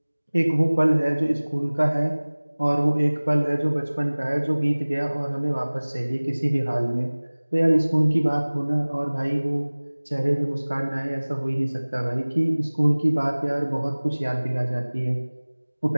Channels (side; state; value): both; inverted; correlation -1.00